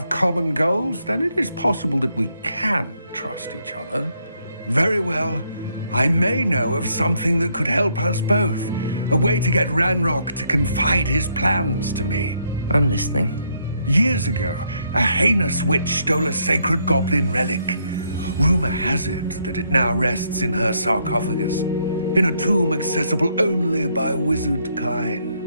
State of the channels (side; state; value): both; inverted; correlation -0.73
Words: common goals, then it is possible that we can trust each other. Very well. I may know of something that could help us both. A way to get Ranrock to confide his plans to me. I'm listening. Years ago, a heinous witch stole a sacred goblin relic. Rumor has it that it now rests in her sarcophagus, in a tomb accessible only by wizard kind.